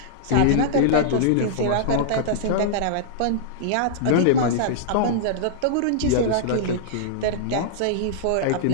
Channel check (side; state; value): both; different; correlation -0.02